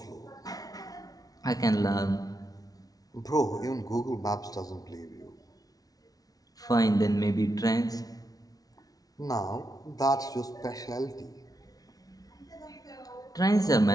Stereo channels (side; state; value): right; late; 0.18 ms